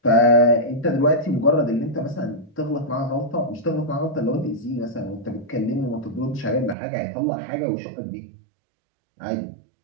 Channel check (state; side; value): drops out; left; at 6.8 s